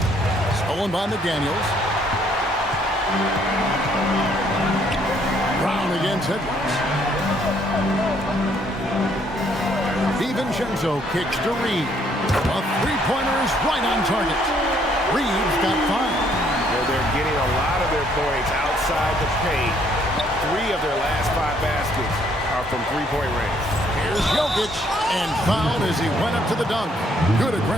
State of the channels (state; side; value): normal; both; correlation 0.66